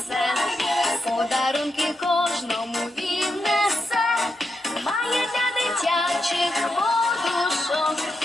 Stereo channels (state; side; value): normal; both; correlation 0.85